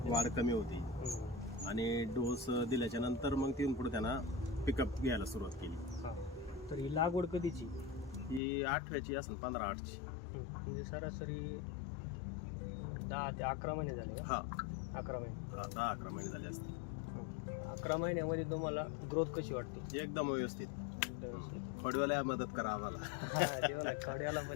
वाढ कमी होती. आणि डोस दिल्याच्या नंतर मग तिथून पुढे त्यांना पिकअप घ्यायला सुरुवात केली. तर ही लागवड कधीची? ही 8व्याची असेल, 15/8ची. म्हणजे सरासरी 10 ते 11 महिने झाले. हा, 11 महिने. 10-11 महिने झाले असते. 11 महिन्यामध्ये तुम्हाला ग्रोथ कशी वाटते? एकदम व्यवस्थित. फडव्याला मदत करा आम्हाला. खड्याला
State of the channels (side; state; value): right; drops out; at 8.4 s